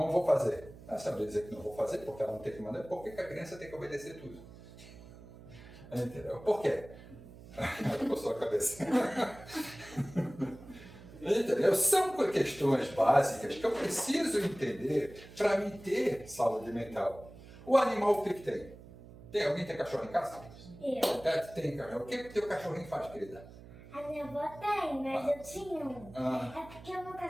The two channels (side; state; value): right; noise; hum, 18 dB below the sound